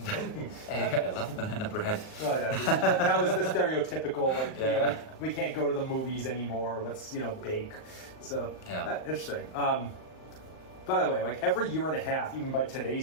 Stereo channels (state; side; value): late; right; 38 ms